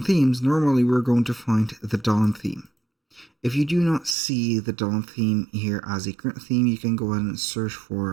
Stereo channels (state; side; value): drops out; left; at 4.2 s